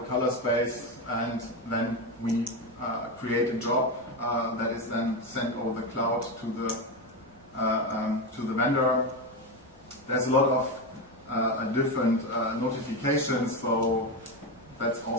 color space, and then we create a job that is then sent over the cloud to the vendor. There's a lot of different notifications, so that's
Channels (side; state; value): both; normal; correlation 0.14